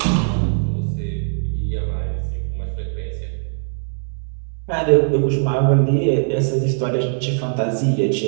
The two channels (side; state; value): left; silent; digital silence